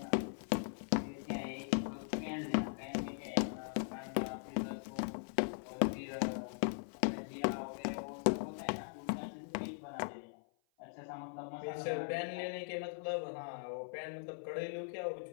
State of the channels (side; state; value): right; silent; 51 dB below the other